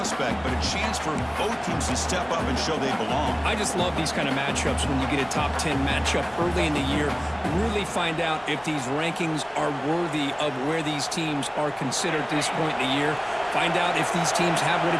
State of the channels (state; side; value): identical; both; correlation 1.00